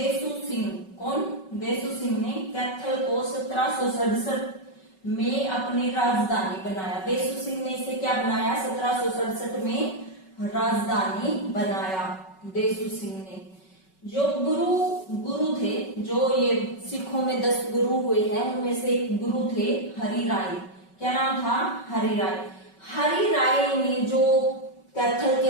सिंह। कौन? देसू सिंह ने कैथल को 1767 में अपनी राजधानी बनाया। देसू सिंह ने इसे क्या बनाया? 1767 में राजधानी बनाया देसू सिंह ने। जो गुरु थे, जो ये सिखों में 10 गुरु हुए हैं उनमें से एक गुरु थे हरि राय। क्या नाम था? हरि राय। हरि राय ने जो कैथल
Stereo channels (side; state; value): right; late; 5.3 ms